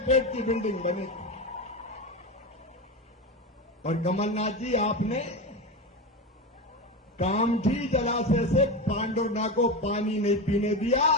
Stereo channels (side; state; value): both; normal; correlation 0.20